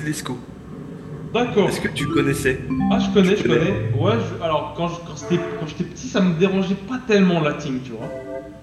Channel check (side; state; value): both; identical; correlation 1.00